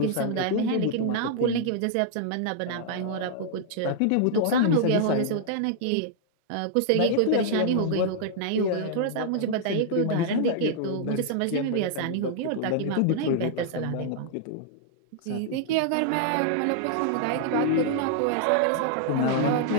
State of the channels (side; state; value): both; different; correlation -0.01